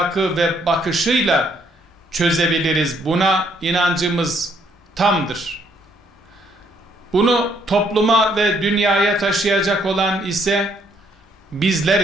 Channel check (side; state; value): both; normal; correlation 0.69